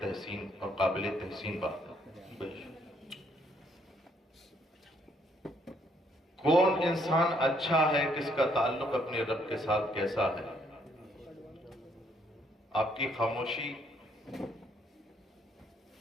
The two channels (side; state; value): both; normal; correlation 0.69